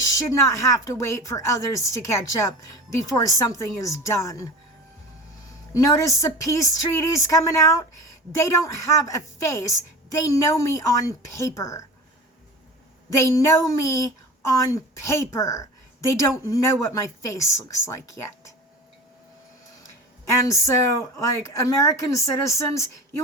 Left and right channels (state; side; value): normal; both; correlation 0.34